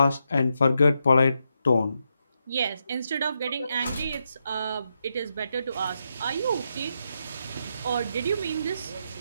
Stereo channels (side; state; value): both; inverted; correlation -0.83